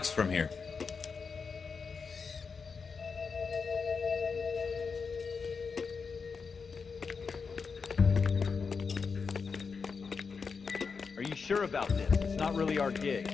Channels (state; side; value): quieter; right; 5.3 dB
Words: from here. Are you sure about this? It's not really our gig.